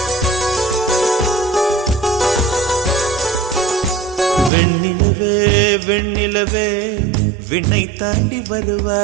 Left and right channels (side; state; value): left; drops out; at 4.5 s